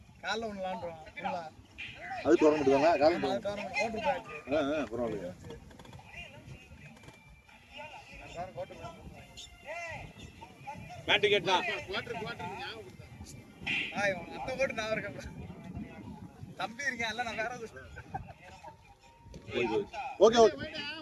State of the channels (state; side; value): identical; both; correlation 1.00